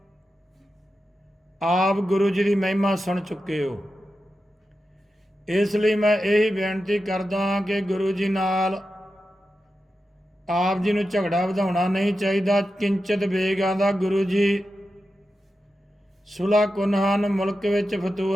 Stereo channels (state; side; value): normal; both; correlation 0.91